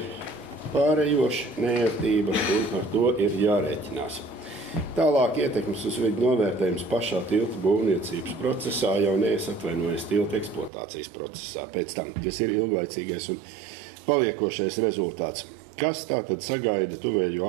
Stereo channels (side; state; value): left; drops out; at 10.7 s